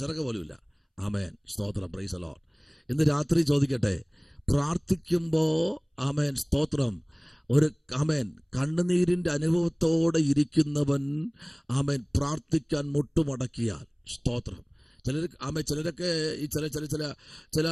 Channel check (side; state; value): both; identical; correlation 1.00